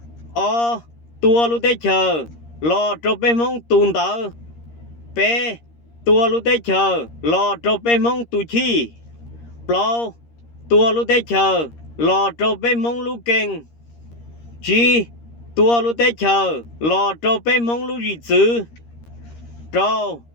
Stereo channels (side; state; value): right; late; 13 ms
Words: tua lũ tế chờ lò trò bê mong tùn tờ bê tua lũ tế chờ lò trò bê mong tù chi plau tua lũ tế chờ lò trò bê mong lũ kênh chi tua lũ tế chờ lò trò bê mong lũ dị chữ trâu